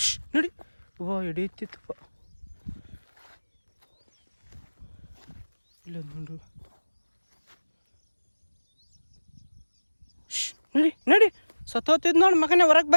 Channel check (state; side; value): inverted; both; correlation -1.00